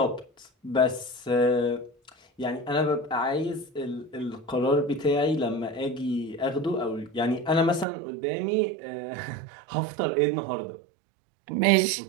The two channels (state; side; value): drops out; left; at 7.9 s